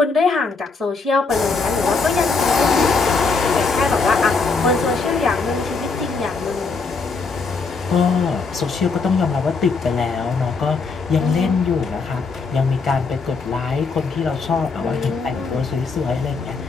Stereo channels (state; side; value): quieter; right; 4.4 dB